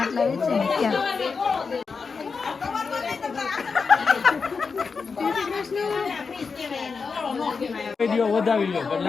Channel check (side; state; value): right; quieter; 5.0 dB